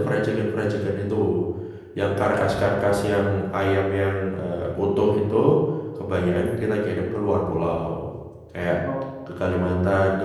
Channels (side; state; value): both; identical; correlation 1.00